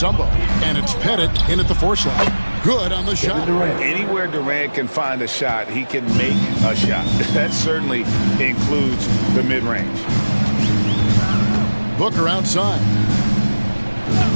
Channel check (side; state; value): both; inverted; correlation -1.00